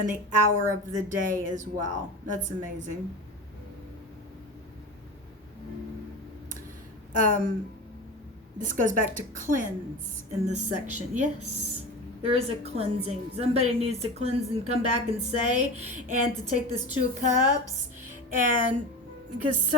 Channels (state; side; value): normal; both; correlation 0.29